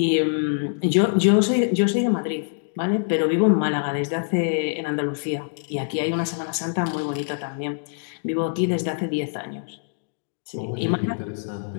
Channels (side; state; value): right; silent; digital silence